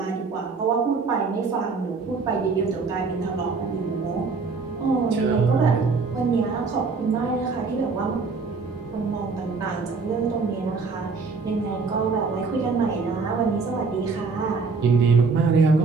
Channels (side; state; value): left; quieter; 4.5 dB